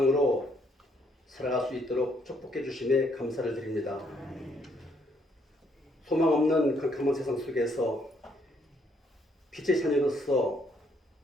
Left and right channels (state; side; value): normal; both; correlation 0.70